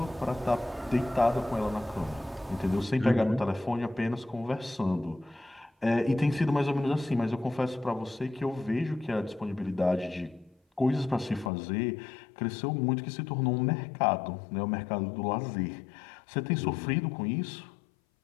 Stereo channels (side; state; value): right; drops out; at 11.5 s